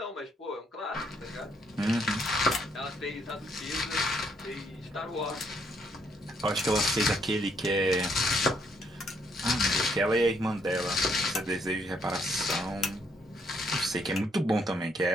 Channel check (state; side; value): normal; both; correlation 0.71